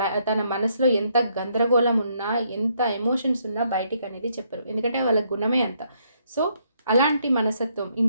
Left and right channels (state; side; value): inverted; both; correlation -0.72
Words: తన మనసులో ఎంత గందరగోళం ఉన్నా, ఎంత ఎమోషన్స్ ఉన్నా బయటికనేది చెప్పరు. ఎందుకంటే వాళ్ళ గుణమే అంత. సో, అలాంటి మనస్తత్వం